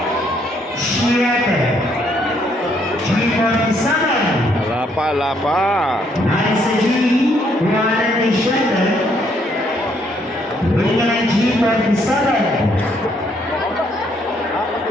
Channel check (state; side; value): normal; both; correlation 0.70